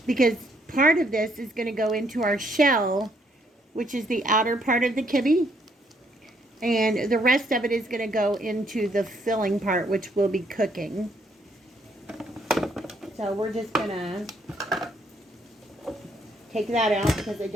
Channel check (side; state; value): both; normal; correlation 0.70